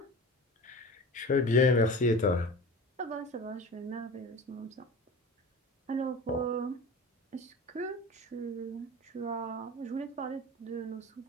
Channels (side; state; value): both; normal; correlation 0.35